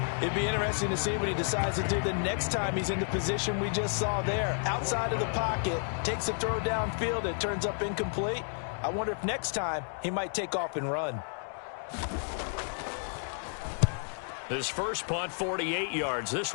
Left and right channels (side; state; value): right; silent; 57 dB below the other